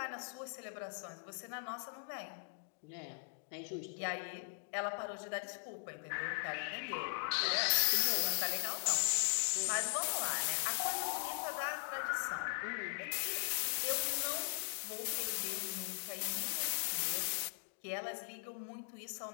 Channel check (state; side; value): silent; right; digital silence